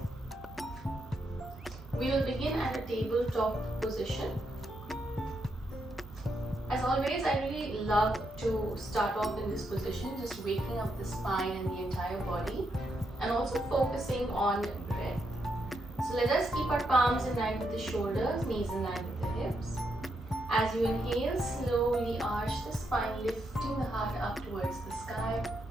We will begin at a tabletop position. As always, I really love to start off in this position, just waking up the spine and the entire body, and also focusing on breath. So let us keep our palms in line with the shoulders, knees in line with the hips. As you inhale, slowly arch the spine, lifting the heart up towards the sky.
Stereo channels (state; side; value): normal; both; correlation 0.80